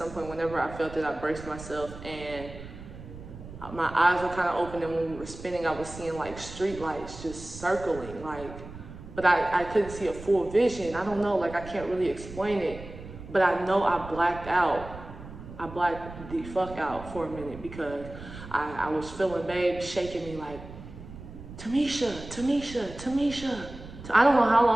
point. Whenever I felt it, I braced myself and my eyes were kind of open. And when we were spinning, I was seeing like street lights just circling, like, but I couldn't see a full vision. I don't know, like, I can't really explain it, but I know I blacked out. I blacked the fuck out for a minute because I was feeling Babe shaking me like, Tamisha, Tamisha, Tamisha. I don't know how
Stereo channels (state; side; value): noise; right; rumble, 14 dB below the sound